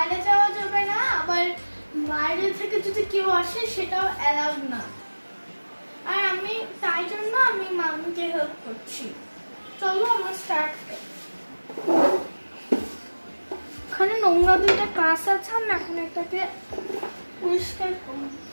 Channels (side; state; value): both; inverted; correlation -1.00